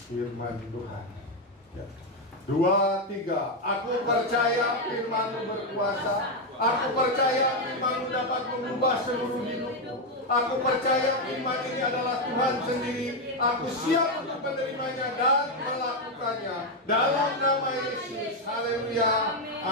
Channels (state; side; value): normal; both; correlation 0.05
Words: firman Tuhan. Ya. 2, 3. Aku percaya firman-Mu berkuasa. Aku percaya firman-Mu dapat mengubah seluruh hidupku. Aku percaya firman ini adalah Tuhan sendiri. Aku siap untuk menerimanya dan melakukannya. Dalam nama Yesus. Haleluya.